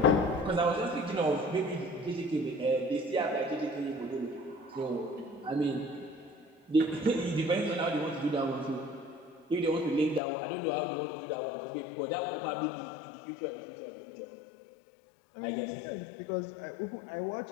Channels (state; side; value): drops out; right; at 10.2 s